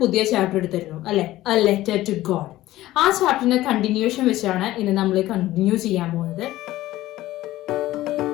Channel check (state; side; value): quieter; right; 15.9 dB